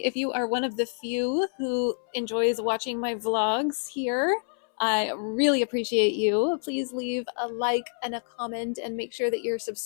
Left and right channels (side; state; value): right; silent; 60 dB below the other